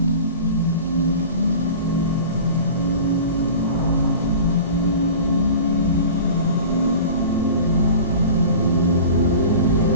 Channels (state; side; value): inverted; both; correlation -0.38